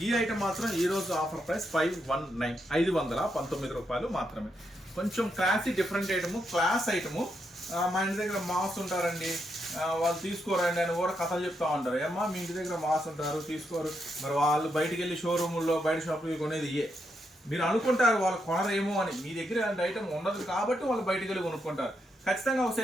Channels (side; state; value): both; normal; correlation 0.81